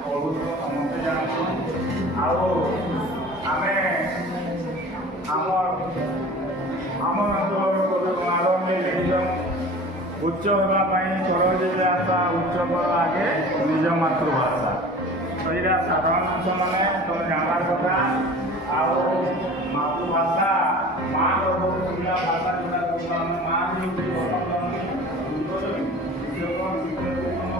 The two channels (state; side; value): normal; both; correlation 0.41